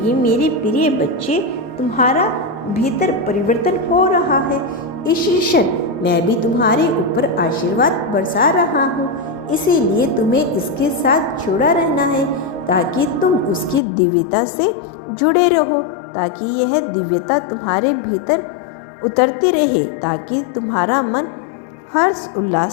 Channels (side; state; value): right; drops out; at 13.8 s